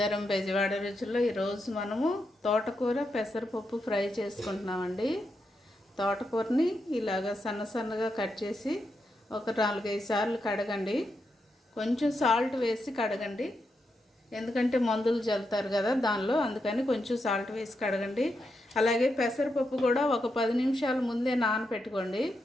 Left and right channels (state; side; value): normal; both; correlation 0.84